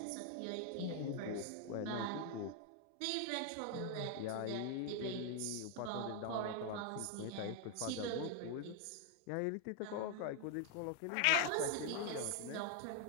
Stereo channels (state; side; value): different; both; correlation 0.00